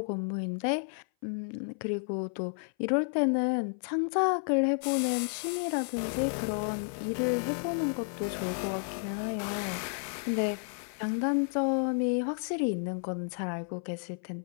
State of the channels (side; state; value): right; silent; 57 dB below the other